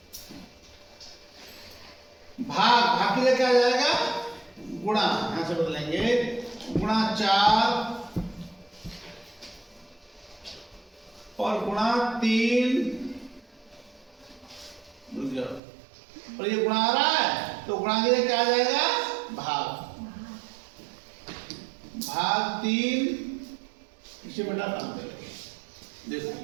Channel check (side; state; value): left; drops out; at 15.6 s